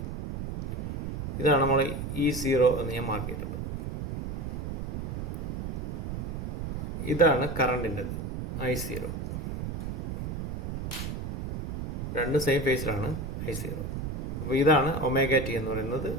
ഇതാണ് നമ്മൾ E0 എന്ന് ഞാൻ മാർക്ക് ചെയ്തിട്ടുണ്ട്. ഇതാണ് കറണ്ടിൻ്റെത് I0. രണ്ട് സെയിം ഫേസിലാണ് I0. അപ്പോൾ ഇതാണ് ഒമേഗ ടി എന്ന് പറയുന്നത്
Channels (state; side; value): noise; right; rumble, 5 dB below the sound